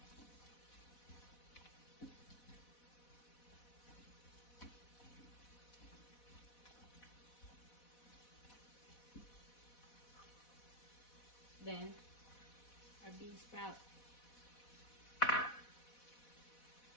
Then our bean sprout.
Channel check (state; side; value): late; right; 4.1 ms